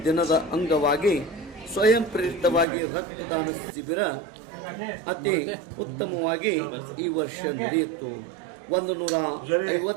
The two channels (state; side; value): drops out; left; at 2.7 s